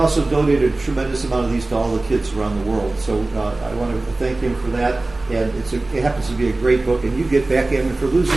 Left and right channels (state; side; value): quieter; left; 3.0 dB